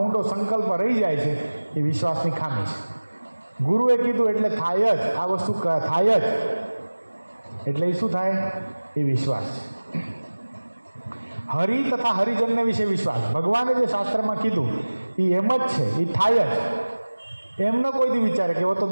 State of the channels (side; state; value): both; inverted; correlation -1.00